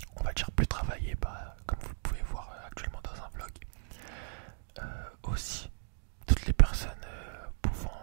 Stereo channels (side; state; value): left; silent; digital silence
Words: on va dire plus travaillée, comme vous le pouvez voir actuellement dans un vlog. Aussi toutes les personnes pouvant